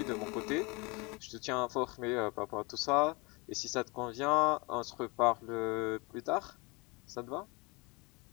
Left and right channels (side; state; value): right; quieter; 27.7 dB